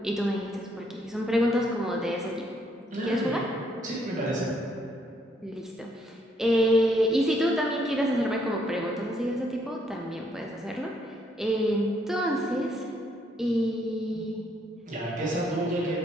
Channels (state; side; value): normal; both; correlation 0.70